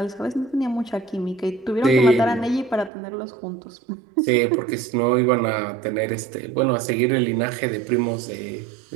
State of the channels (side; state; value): left; drops out; at 2.9 s